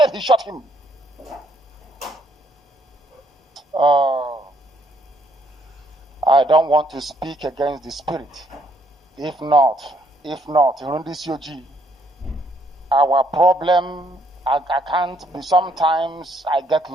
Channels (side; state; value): both; normal; correlation 0.69